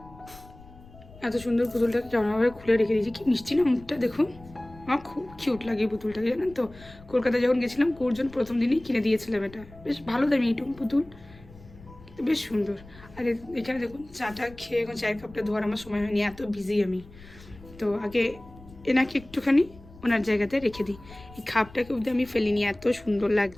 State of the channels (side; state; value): left; noise; rumble, 21 dB below the sound